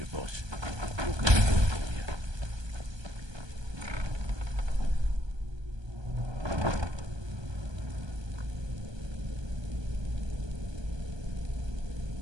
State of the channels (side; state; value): left; late; 1.2 ms